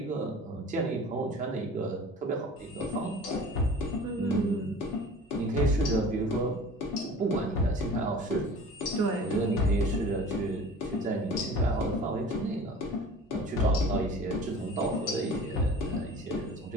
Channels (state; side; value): normal; both; correlation 0.42